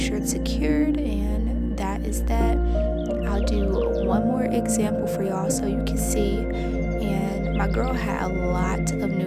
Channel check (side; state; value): both; identical; correlation 1.00